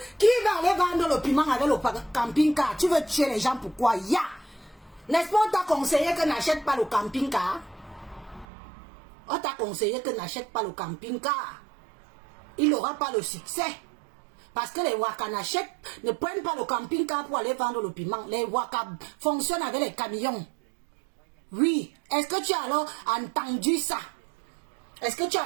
Qui va aller vendre le piment avec le camping-car? Tu veux tuer les gens, pourquoi? Ya! N'est-ce pas, on t'a conseillé que n'achète pas le camping-car? On t'a conseillé que n'achète pas le camping-car. Il n'aura pas le succès. Parce que les Waka ne prennent pas le camping-car pour aller vendre le piment. Les Waka fonctionnent avec les camions. Oui. Est-ce que tu as alors entendu ça? Est-ce que tu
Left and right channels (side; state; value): left; drops out; at 8.5 s